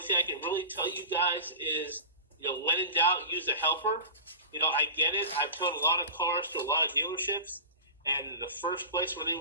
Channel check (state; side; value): inverted; both; correlation -0.32